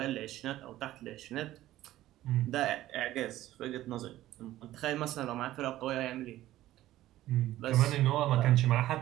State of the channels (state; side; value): quieter; left; 14.7 dB